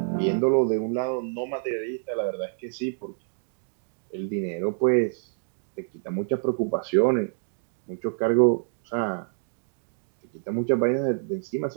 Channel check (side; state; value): left; silent; digital silence